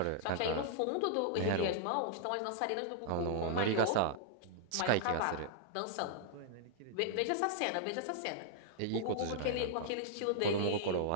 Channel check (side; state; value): both; different; correlation -0.01